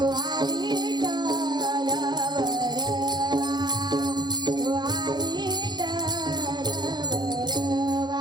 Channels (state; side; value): late; left; 0.21 ms